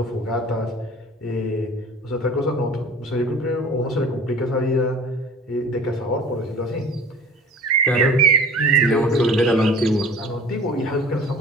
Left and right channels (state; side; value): normal; both; correlation 0.44